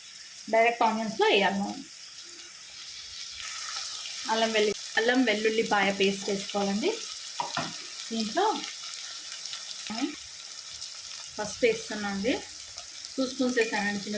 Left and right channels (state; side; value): identical; both; correlation 1.00